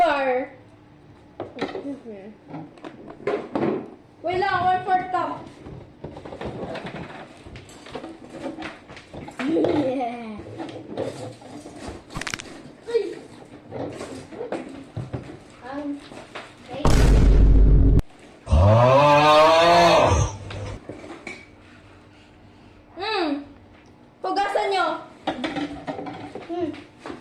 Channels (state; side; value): identical; both; correlation 1.00